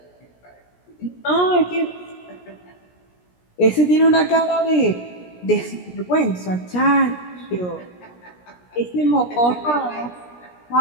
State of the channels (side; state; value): right; late; 17 ms